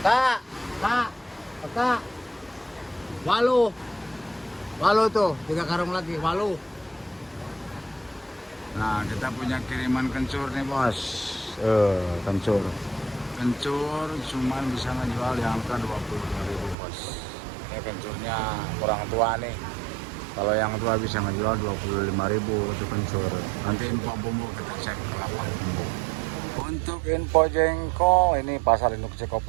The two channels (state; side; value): drops out; left; at 16.8 s